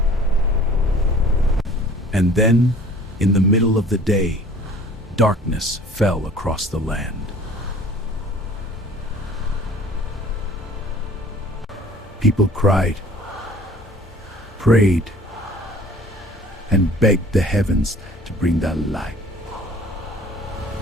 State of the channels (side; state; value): both; normal; correlation 0.50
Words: And then, in the middle of the day, darkness fell across the land. People cried, prayed, and begged the heavens to bring that light.